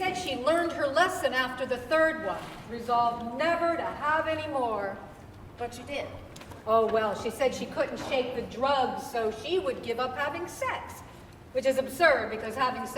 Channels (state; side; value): identical; both; correlation 1.00